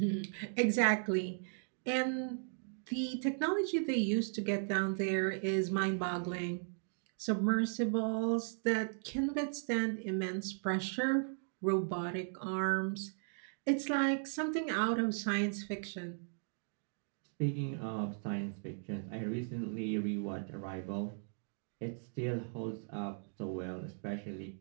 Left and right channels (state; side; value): silent; left; digital silence